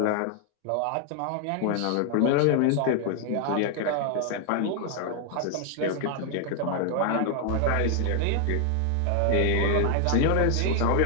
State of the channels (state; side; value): different; both; correlation 0.00